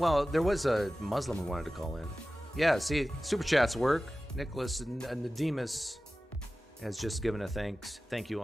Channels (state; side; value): normal; both; correlation 0.95